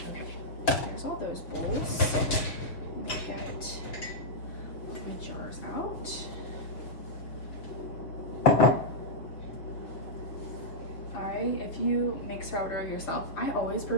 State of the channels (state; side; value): late; right; 6.6 ms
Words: Okay, there's all those bowls. Let me get all my jars out. If you make sourdough yourself, I always